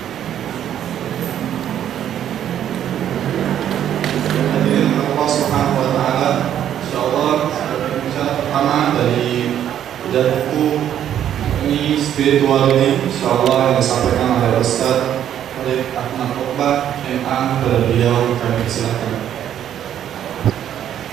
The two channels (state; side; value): quieter; left; 10.3 dB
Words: Hadirin Allah Subhanahu wa taala, insyaallah pembicara pertama dari bedah buku ini spirituality, insyaallah yang disampaikan oleh Ustaz Farid Ahmad Rohbah MA. Kepada beliau kami persilakan.